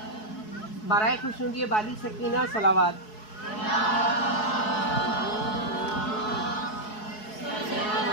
برائے خوشنودی بالی سکینہ صلوات۔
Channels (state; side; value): late; right; 4.7 ms